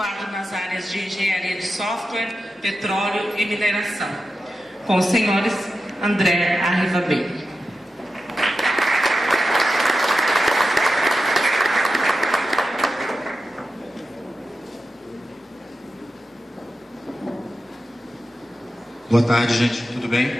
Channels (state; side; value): normal; both; correlation 0.91